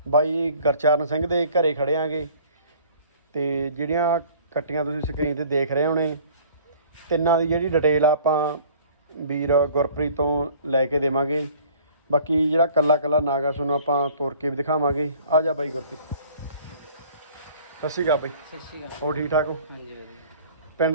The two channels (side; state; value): both; inverted; correlation -0.51